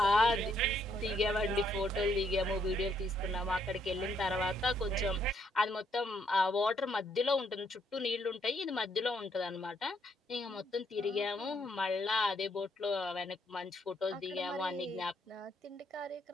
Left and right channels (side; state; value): both; normal; correlation 0.72